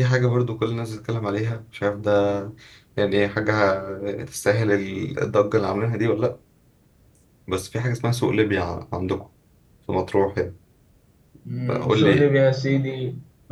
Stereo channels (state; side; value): identical; both; correlation 1.00